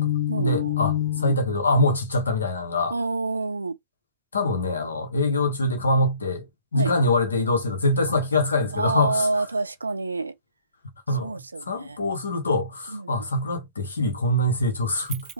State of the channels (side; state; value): both; inverted; correlation -0.56